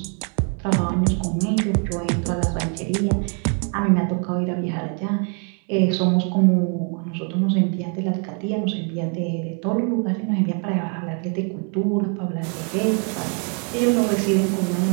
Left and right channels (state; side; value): quieter; left; 39.7 dB